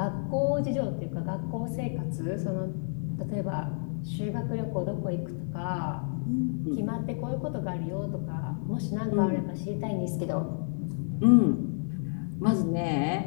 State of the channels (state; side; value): silent; right; 58 dB below the other